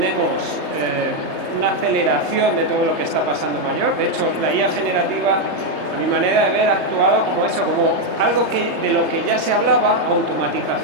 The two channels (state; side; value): late; right; 3.3 ms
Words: una aceleración de todo lo que está pasando mayor. De hecho, la IA generativa, a mi manera de ver, ha actuado como eso, como algo de lo que ya se hablaba,